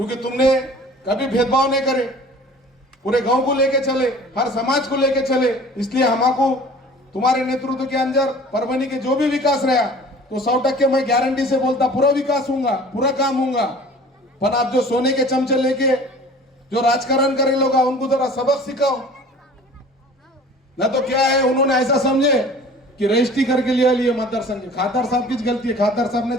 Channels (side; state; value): both; normal; correlation 0.46